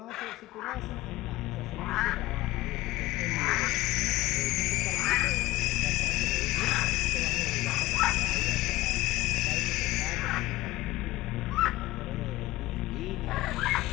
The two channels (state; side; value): quieter; right; 18.0 dB